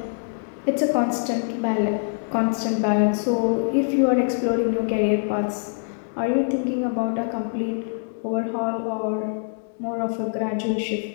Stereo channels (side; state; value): right; silent; digital silence